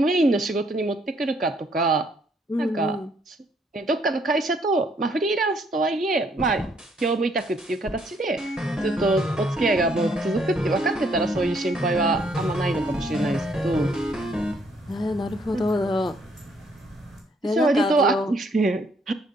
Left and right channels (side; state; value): both; normal; correlation 0.68